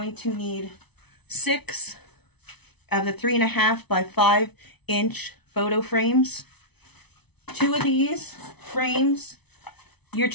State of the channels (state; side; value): late; right; 0.99 ms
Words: to need 6 of the 3.5 by 5 inch photo frames. 2 of these frames you're